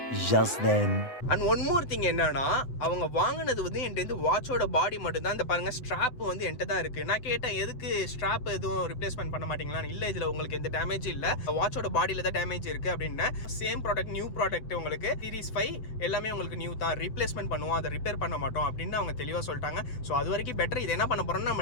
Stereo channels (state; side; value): late; right; 8.0 ms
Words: just then. And one more thing என்னன்னா, அவங்க வாங்கினது வந்து என்கிட்ட வாட்சோட பாடி மட்டும் தான். இந்த பாருங்க, ஸ்ட்ராப் வந்து என்கிட்ட தான் இருக்குது. நான் கேட்டேன், எதுக்கு ஸ்ட்ராப் எதுவும் ரிப்ளேஸ்மெண்ட் பண்ண மாட்டீங்களா? இல்லை, இதில் உங்களுக்கு எந்த டேமேஜ் இல்லை, வாட்சோட பாடியில் தான் டேமேஜ் இருக்குது அப்படின்னு. சேம் ப்ராடக்ட், நியூ ப்ராடக்ட், உங்களுக்கு சீரிஸ் 5 எல்லாமே உங்களுக்கு நியூ தான், ரீப்ளேஸ்மெண்ட் பண்ணுவோம், அதை ரிப்பேர் பண்ண மாட்டோம் அப்படின்னு அவங்க தெளிவாக சொல்லிட்டாங்க. ஸோ அது வரைக்கும் பெட்டர். இது என்ன பண்ண போகிறோம்னா,